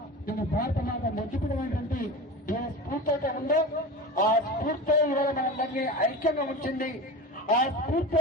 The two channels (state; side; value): normal; both; correlation 0.30